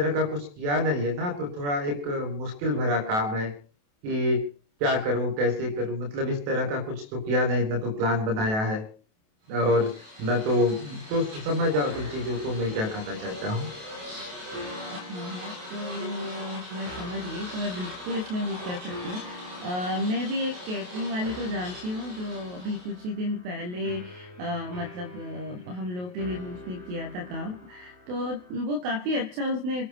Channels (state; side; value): late; left; 28 ms